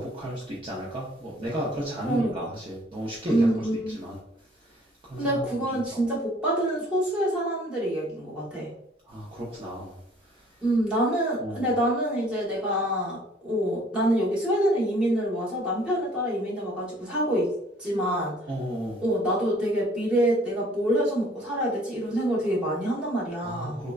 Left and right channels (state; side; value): normal; both; correlation 0.56